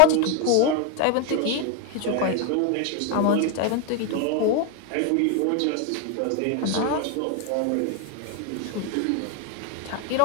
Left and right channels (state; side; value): different; both; correlation 0.01